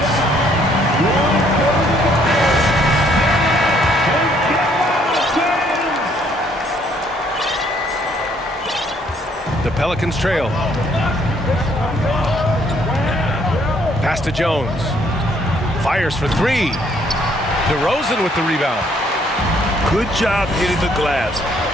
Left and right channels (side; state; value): both; normal; correlation 0.66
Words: The Pelicans trail. Pass to Jones. Fires for three. DeRozan with the rebound. Good job hitting the glass.